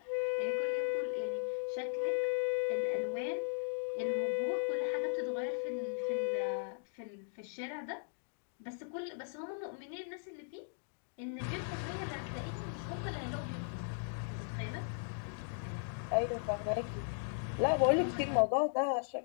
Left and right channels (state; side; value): silent; right; digital silence